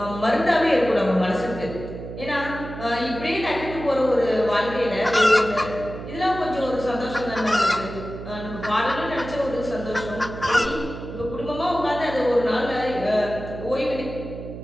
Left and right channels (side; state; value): right; noise; hum, 10 dB below the sound